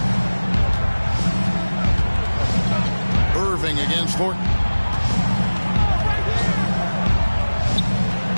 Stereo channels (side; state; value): both; inverted; correlation -1.00